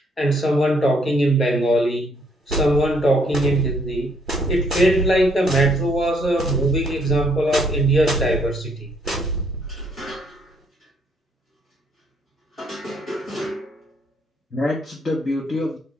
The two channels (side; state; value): both; normal; correlation 0.69